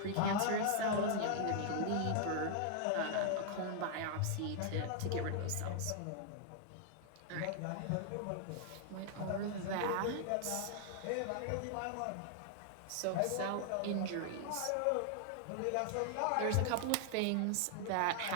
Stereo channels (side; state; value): both; different; correlation 0.00